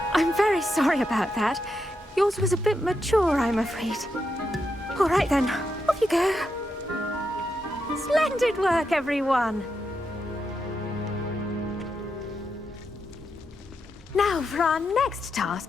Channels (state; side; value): normal; both; correlation 0.84